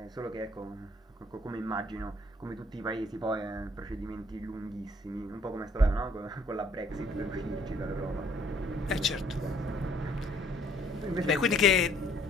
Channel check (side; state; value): both; normal; correlation 0.62